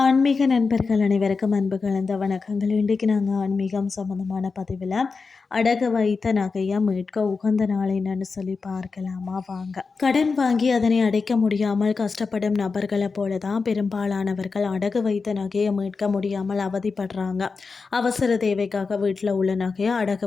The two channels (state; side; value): quieter; right; 4.6 dB